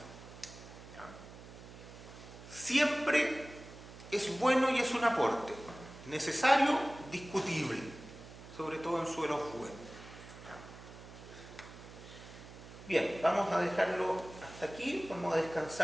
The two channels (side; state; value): right; noise; hum, 16 dB below the sound